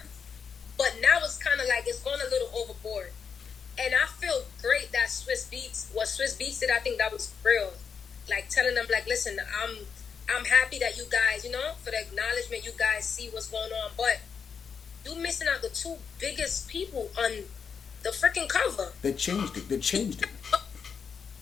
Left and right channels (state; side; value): quieter; right; 6.3 dB